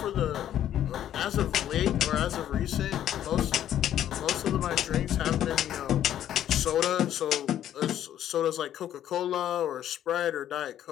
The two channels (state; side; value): quieter; right; 11.1 dB